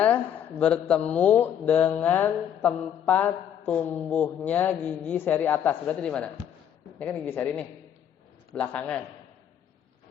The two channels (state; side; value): quieter; right; 9.4 dB